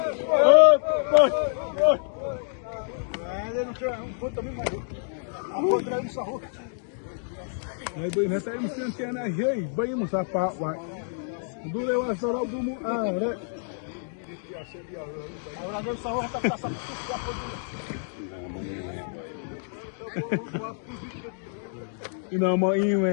Ay, boy, nasa yung siya na hey, boy mo sa pawa. Dule wa sa robo mo are. Ahora no sa hoja ta sa ina mo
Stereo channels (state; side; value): silent; right; digital silence